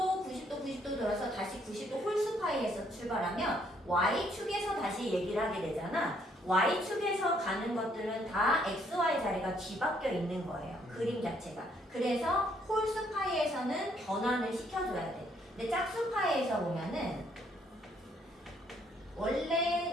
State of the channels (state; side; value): normal; both; correlation 0.68